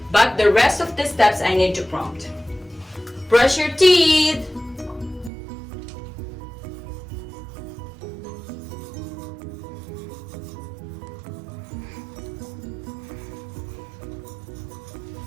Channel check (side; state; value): left; drops out; at 5.3 s